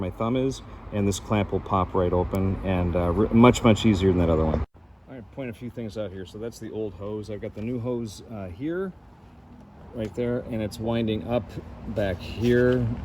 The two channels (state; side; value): identical; both; correlation 1.00